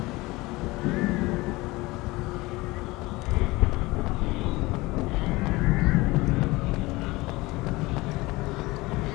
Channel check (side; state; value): right; quieter; 21.4 dB